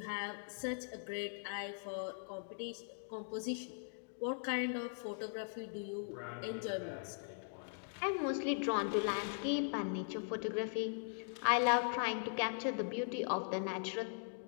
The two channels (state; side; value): silent; right; digital silence